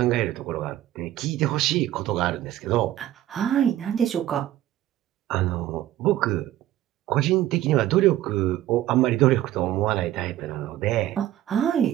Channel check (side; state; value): left; quieter; 13.5 dB